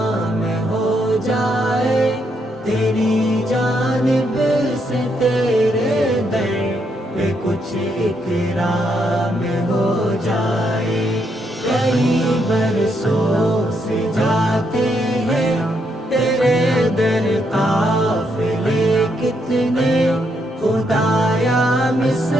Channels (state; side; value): normal; both; correlation 0.77